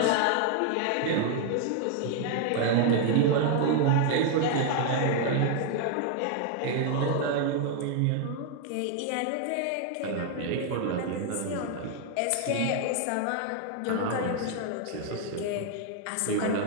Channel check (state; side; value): different; both; correlation 0.00